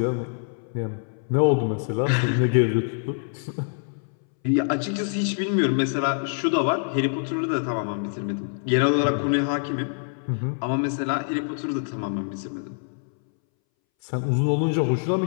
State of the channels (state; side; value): silent; right; 62 dB below the other